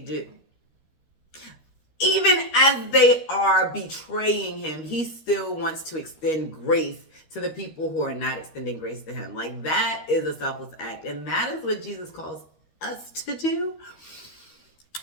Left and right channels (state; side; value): late; right; 13 ms